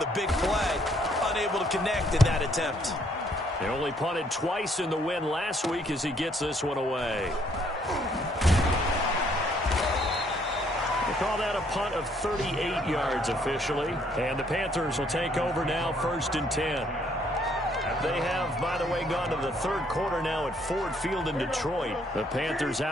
a big play. Unable to connect in that attempt. They only punted twice in the win last week as he gets this one away. Call that a punt of 38 yards officially. And the Panthers will take over now, 1st and 10. They have, by the way, gone to the 3rd quarter now at Ford Field in Detroit. The Panthers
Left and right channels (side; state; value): both; normal; correlation 0.67